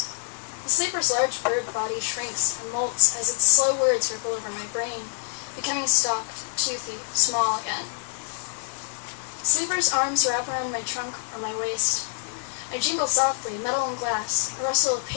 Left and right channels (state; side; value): silent; right; digital silence